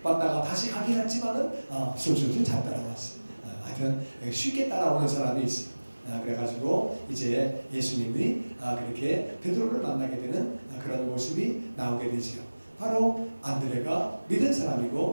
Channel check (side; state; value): both; inverted; correlation -1.00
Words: 왔다가 다시 가긴 했지만은 술술술 잘 따라왔어요. 하여튼 쉽게 따라오는 사람이 있어요. 그래가지고 이제 예수님이 그렇게 베드로를 만나게 되는 그런 모습이 나오게 되죠. 바로 안드레가 믿은